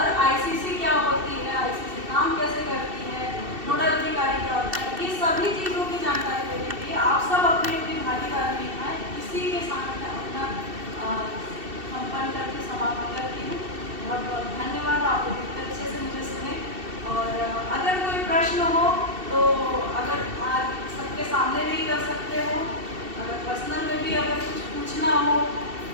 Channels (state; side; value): late; left; 2.7 ms